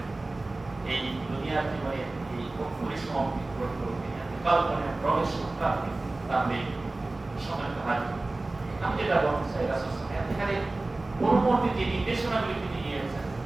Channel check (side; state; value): left; quieter; 3.0 dB